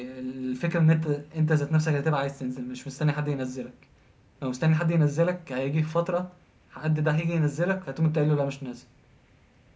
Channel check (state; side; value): identical; both; correlation 1.00